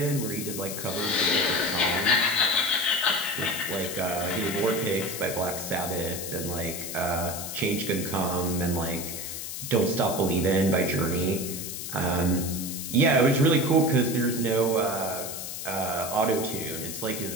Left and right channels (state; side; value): noise; left; hiss, 7 dB below the sound